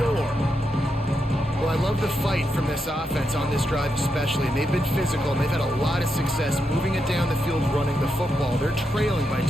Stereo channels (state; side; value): normal; both; correlation 0.84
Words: Well, I love the fight from this offense on this drive especially, and they've been physical, and they've had a lot of success moving it down the field, running the football. They're trailing by